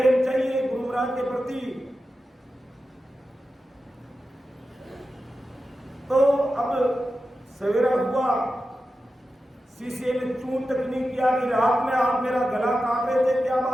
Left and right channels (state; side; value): normal; both; correlation 0.92